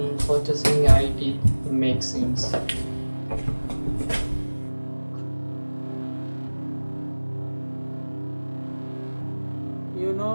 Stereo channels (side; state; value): both; inverted; correlation -1.00